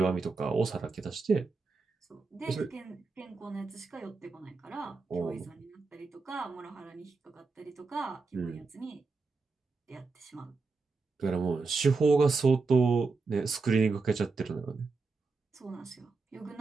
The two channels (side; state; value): left; quieter; 4.2 dB